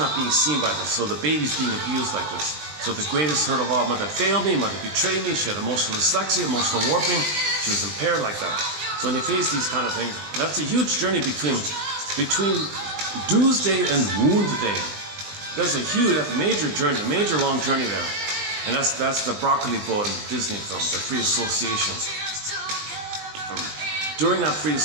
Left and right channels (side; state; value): left; late; 20 ms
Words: being seen by this, so the baby's being abused like this. So the greatest hurt of all, mother failed me, mother betrayed me, she had emotional dyslexia, emotional warping, she was impaired like that. So when you face these kind of things, that's a huge journey between Doomsday and Wound Day. That's a major journey, a major long journey there. And that's the broccoli boat in the Disney film, the free association. During that free